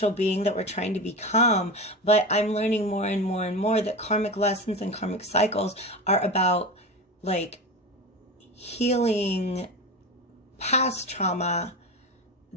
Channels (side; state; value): both; normal; correlation 0.25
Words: being that we're trying to become. But I'm learning more and more and more that karmic lessons and karmic cycles are about like healing past trauma